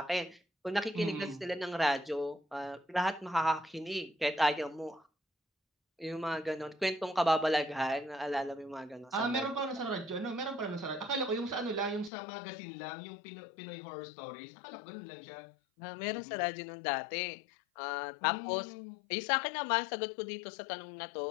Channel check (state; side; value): drops out; right; at 12.1 s